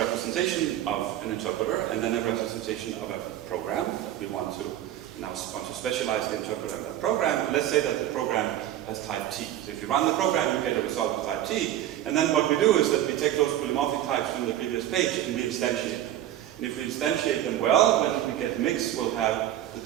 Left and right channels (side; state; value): left; quieter; 12.4 dB